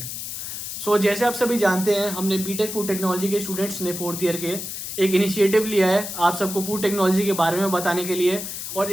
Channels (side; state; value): left; noise; hiss, 7 dB below the sound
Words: So जैसे आप सभी जानते हैं, हमने BTech food technology के students ने 4th year के एक इनिशिएटिव लिया है आप सबको फूड टेक्नोलॉजी के बारे में बताने के लिए, और